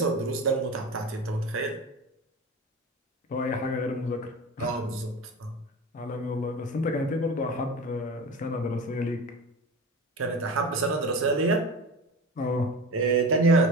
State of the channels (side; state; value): both; normal; correlation 0.30